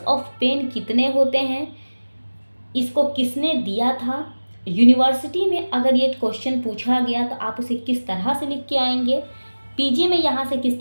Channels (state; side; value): inverted; both; correlation -1.00